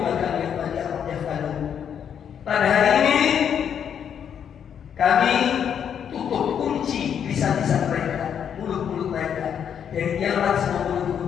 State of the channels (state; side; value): quieter; right; 8.3 dB